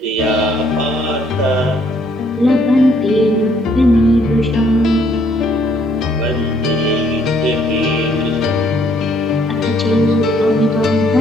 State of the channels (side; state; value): both; normal; correlation 0.66